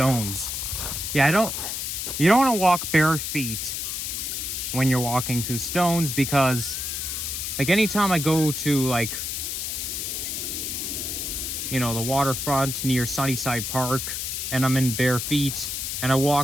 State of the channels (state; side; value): noise; left; hiss, 3 dB below the sound